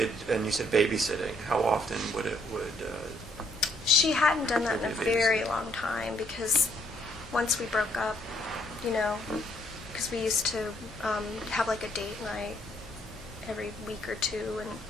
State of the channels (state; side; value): normal; both; correlation 0.67